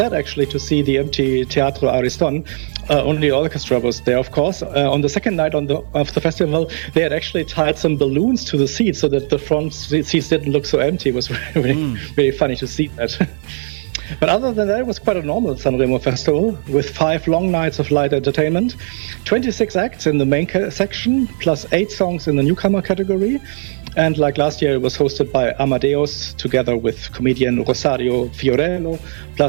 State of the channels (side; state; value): left; silent; digital silence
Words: actually, to see the empty Teatro Ariston. Only orchestra was there, of course. On the second night of the festival, they had actually tied some balloons to the seats so that the front seats didn't look so empty. It was really funny to see that. But other than that, it was quite a normal Sanremo festival with 5 long nights of light entertainment, 26 acts in the main section, plus 8 songs in the newcomer category. And like last year, it was hosted by Amadeus together with comedian Rosario Fiorello,